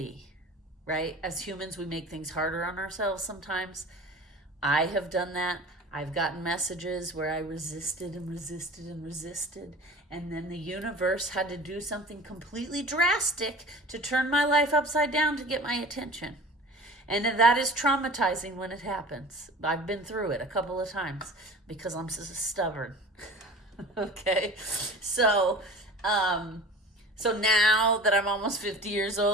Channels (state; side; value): normal; both; correlation 0.39